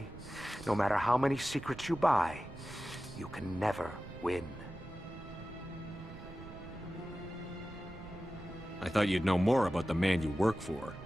no matter how many secrets you buy, you can never win. I thought you'd know more about the man you work for.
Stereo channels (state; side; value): noise; right; rumble, 18 dB below the sound